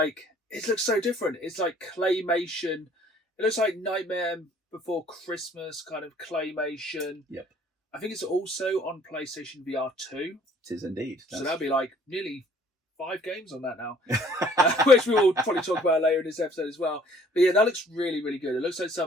it looks so different. It's like claymation. It looks like Nightmare Before Christmas kind of claymation. Yep. I think it's also on PlayStation VR 2. It is indeed. So that'll be like nearly 5 games on that now, which we will probably talk about later in this episode as well. But yeah, that looks really, really good. It looks like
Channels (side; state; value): both; normal; correlation 0.57